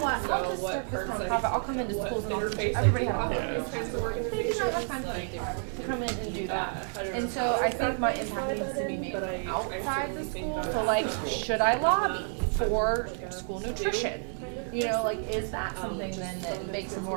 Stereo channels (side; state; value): left; silent; 58 dB below the other